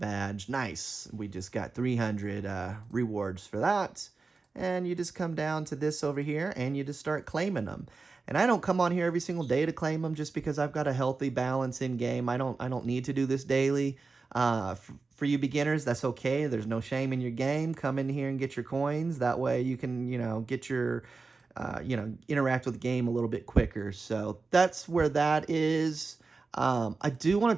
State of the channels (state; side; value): quieter; left; 4.1 dB